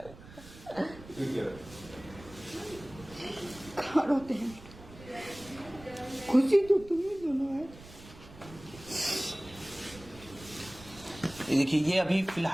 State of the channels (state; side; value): noise; right; rumble, 18 dB below the sound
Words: कहाँ रोते हैं? खुशी तो तुम्हें दोनों है। देखिए, ये अभी